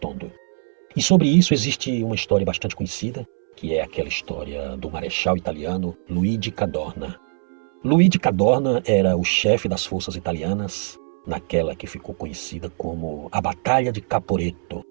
E sobre isso existe uma história bastante conhecida, que é aquela história do marechal italiano Luigi Cadorna. Luigi Cadorna era o chefe das forças italianas naquela que ficou conhecida como a Batalha de Caporetto,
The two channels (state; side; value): silent; left; 64 dB below the other